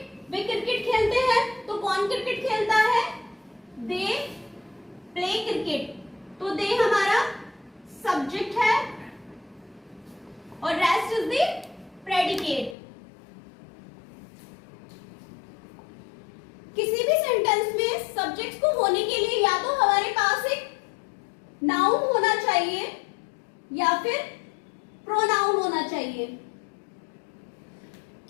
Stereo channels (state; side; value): drops out; right; at 12.8 s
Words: Way cricket खेलते हैं। तो कौन क्रिकेट खेलता है? They play cricket. तो they हमारा सब्जेक्ट है और रेस्ट इज द प्रेडिकेट। किसी भी सेंटेंस में सब्जेक्ट को होने के लिए या तो हमारे पास एक नाउन होना चाहिए या फिर प्रोनाउन होना चाहिए।